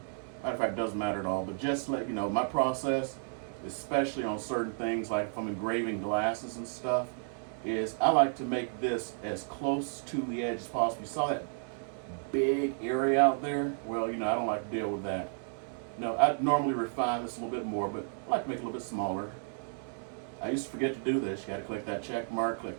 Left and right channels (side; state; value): left; silent; digital silence